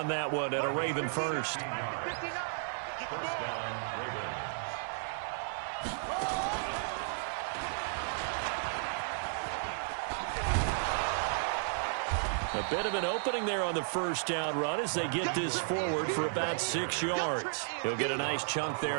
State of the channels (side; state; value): left; silent; 55 dB below the other